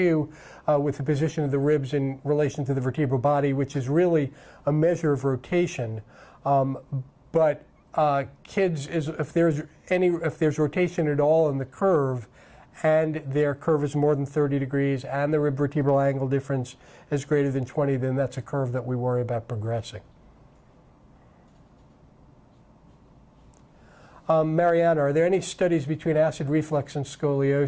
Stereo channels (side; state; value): both; identical; correlation 1.00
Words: with the position of the ribs in relation to the vertebral body, which is really a measure of rotation. But kids, if there's rotation at all in the curve, and their curve is more than 30 degrees, and the rib vertebral angle difference is greater than 20, then that's a curve that we worry about progressing. Mariana, are there any studies between acid reflux and